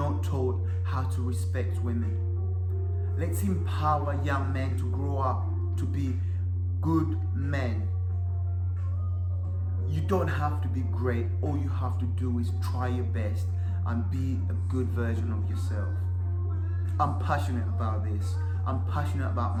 taught how to respect women. Let's empower young men to grow up to be good men. You don't have to be great. All you have to do is try your best and be a good version of yourself. I'm passionate about this. I'm passionate about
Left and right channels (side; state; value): both; identical; correlation 1.00